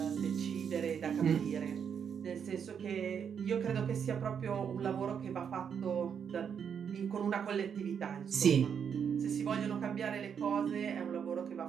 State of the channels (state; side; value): quieter; left; 7.4 dB